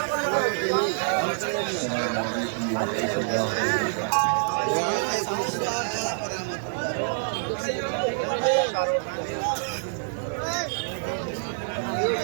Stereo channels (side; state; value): left; silent; digital silence